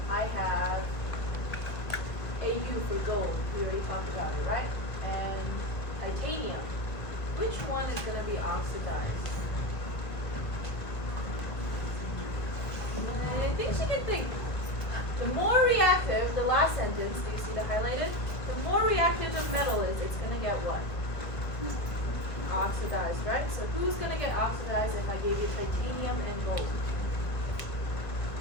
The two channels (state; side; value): late; right; 1.7 ms